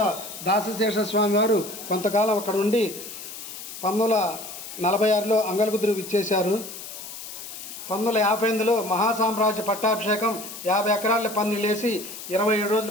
దాసశేష స్వామి వారు కొంతకాలం అక్కడ ఉండి 1946లో అంగలగుదురు విచ్చేశారు. 1958లో మహాసామ్రాజ్య పట్టాభిషేకం 50 ఎకరాల పందిళ్ళేసి 27 రోజుల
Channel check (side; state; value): left; noise; hiss, 11 dB below the sound